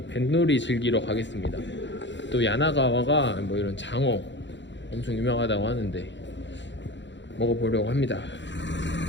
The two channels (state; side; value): late; right; 0.53 ms